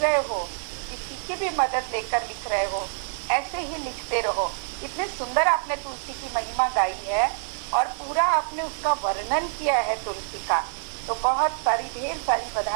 रहे हो, किसी की भी मदद लेकर लिख रहे हो, ऐसे ही लिखते रहो। इतने सुंदर आपने तुलसी की महिमा गाई है और पूरा आपने उसका वर्णन किया है तुलसी का, तो बहुत सारी, ढेर सारी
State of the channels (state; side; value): silent; left; digital silence